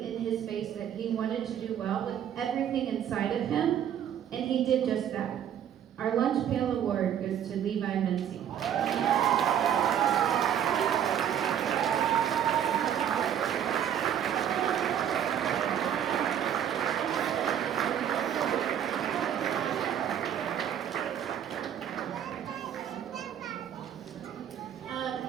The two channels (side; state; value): left; quieter; 9.6 dB